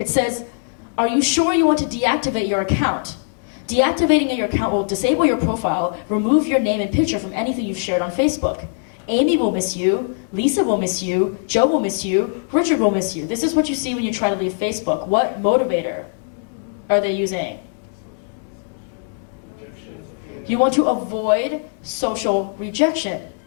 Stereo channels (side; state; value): right; silent; digital silence